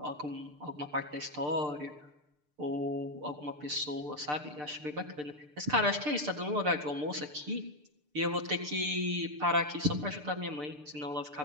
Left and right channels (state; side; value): late; left; 6.7 ms